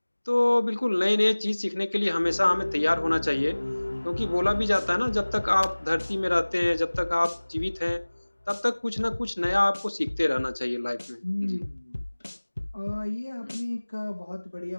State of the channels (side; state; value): both; inverted; correlation -1.00